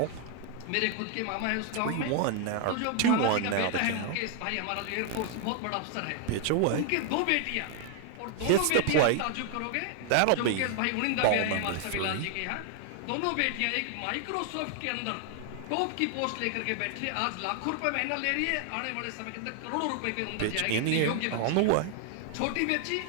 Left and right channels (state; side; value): different; both; correlation 0.00